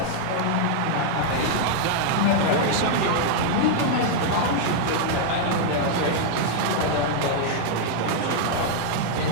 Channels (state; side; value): different; both; correlation -0.01